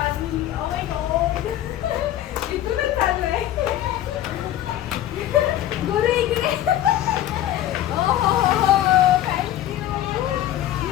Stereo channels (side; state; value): right; quieter; 12.6 dB